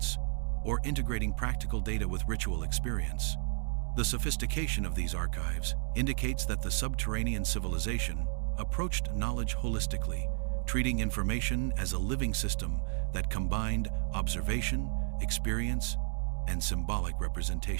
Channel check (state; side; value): silent; left; digital silence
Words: or integrating practical data with ritual experience. The sophistication of these archives indicates that the subterranean civilization approached knowledge holistically, treating information as a living system that combined observation, experience, and symbolic